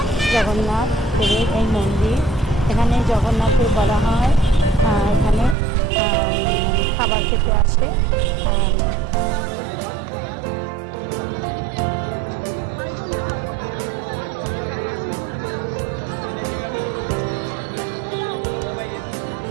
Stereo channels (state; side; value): drops out; left; at 5.6 s